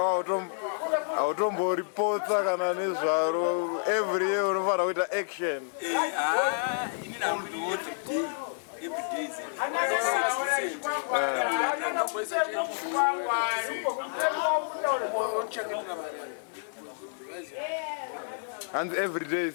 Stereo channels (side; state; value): right; silent; digital silence